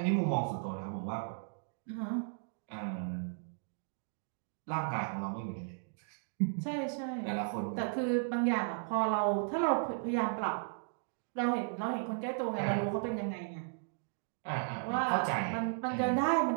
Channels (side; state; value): left; silent; digital silence